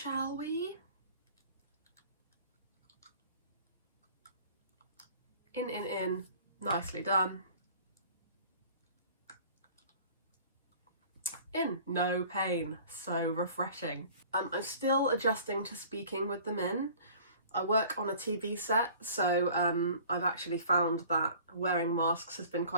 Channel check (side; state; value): both; inverted; correlation -0.48